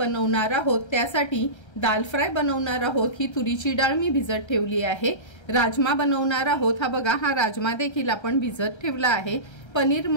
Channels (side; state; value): right; late; 1.3 ms